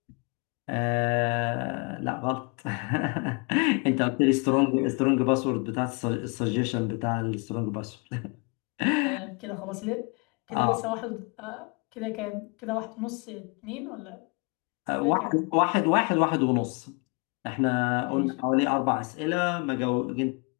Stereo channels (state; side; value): quieter; right; 31.6 dB